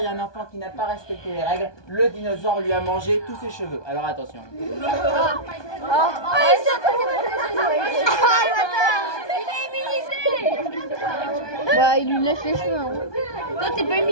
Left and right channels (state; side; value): late; right; 1.2 ms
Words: y a un enfant qui n'a pas respecté les règles, le dinosaure lui a mangé tous ses cheveux. Alors attention. Bah, il lui lèche les cheveux. Hein. Toi t'es pas